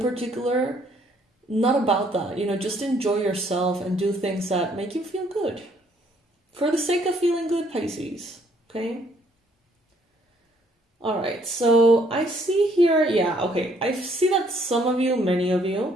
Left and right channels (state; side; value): normal; both; correlation 0.65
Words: particular, not about that. Just enjoy yourself and do things that make you feel good. For the sake of feeling good, Pisces. Okay? Alright, so I see here, I see that some of you, many of